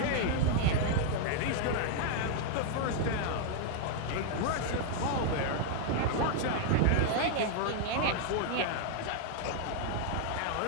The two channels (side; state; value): both; different; correlation 0.00